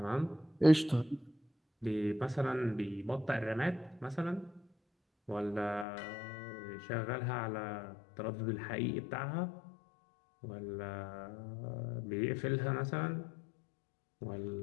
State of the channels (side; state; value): right; drops out; at 5.9 s